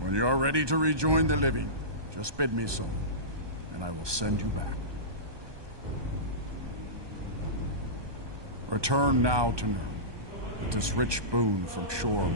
you are ready to rejoin the living, just bid me so, and I will send you back. Return now to Nirn, with this rich boon from Shore,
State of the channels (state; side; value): late; left; 1.2 ms